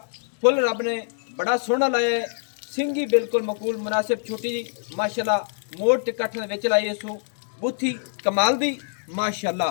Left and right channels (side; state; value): right; silent; digital silence